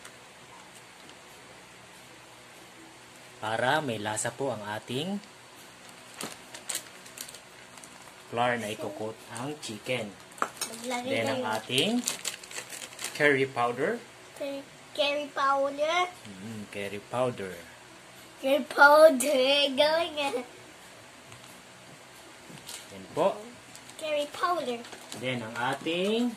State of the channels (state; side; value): identical; both; correlation 1.00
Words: Para may lasa po ang ating flour na ikukot ang chicken. Then ang ating curry powder. Curry powder. Curry powder. Curry powder. Going on. Then po. Curry powder. Then ang ating